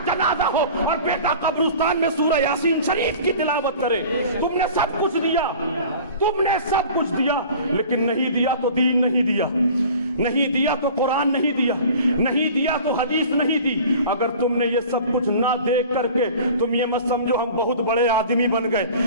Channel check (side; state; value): both; inverted; correlation -0.42